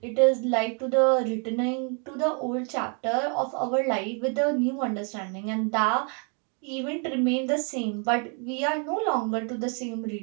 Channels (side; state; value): left; quieter; 38.7 dB